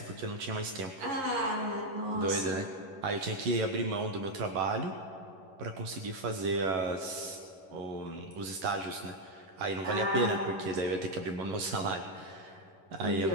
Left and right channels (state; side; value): late; left; 11 ms